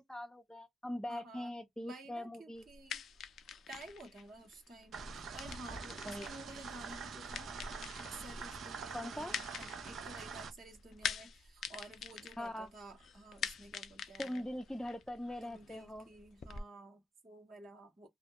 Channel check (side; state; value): both; normal; correlation 0.76